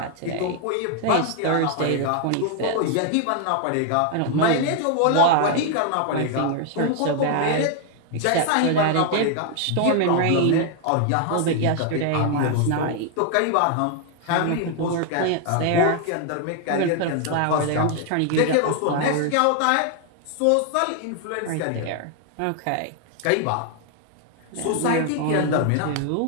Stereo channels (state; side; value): different; both; correlation 0.00